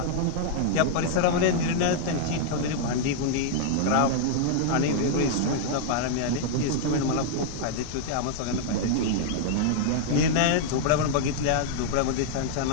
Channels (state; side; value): different; both; correlation -0.01